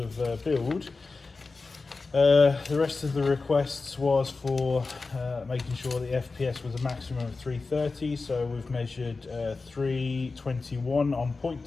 build. The rest of the requests was for making sure the FPS was a maximum of 330, so we've measured 321 on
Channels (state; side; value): quieter; right; 3.9 dB